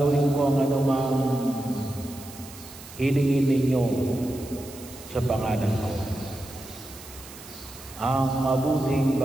ko ang anumang hilingin ninyo sa pangalan ko. Ang mabuting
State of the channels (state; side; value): noise; right; hiss, 17 dB below the sound